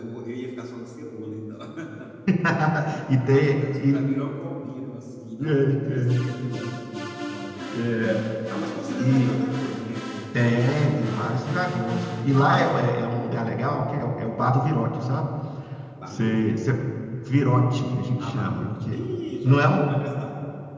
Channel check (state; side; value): identical; both; correlation 1.00